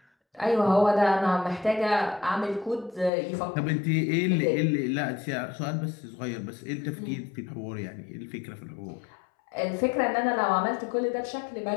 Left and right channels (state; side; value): drops out; right; at 3.1 s